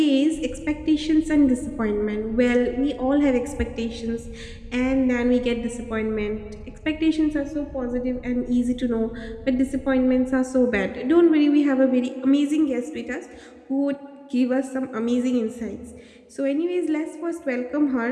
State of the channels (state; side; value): identical; both; correlation 1.00